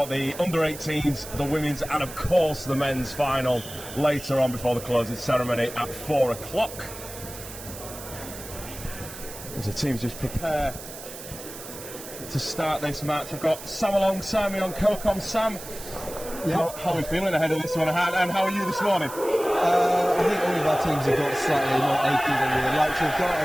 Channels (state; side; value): noise; right; hiss, 13 dB below the sound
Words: the under-18s, the women's, and of course the men's final later on before the closing ceremony at 4 o'clock. As the teams just prepare to start this match, we've got Sam alongside me on CoCom. Sam, how are we feeling ahead of this one, and how are you this morning? I think all of our teams have got slightly more achy than we would like to have got